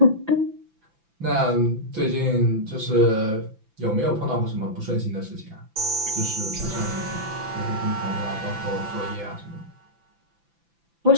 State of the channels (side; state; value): left; late; 5.9 ms